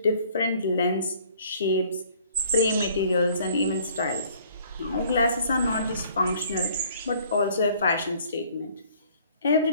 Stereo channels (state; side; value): inverted; both; correlation -0.57